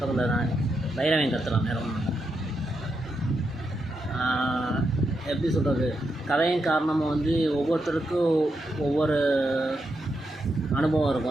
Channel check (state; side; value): normal; both; correlation 0.84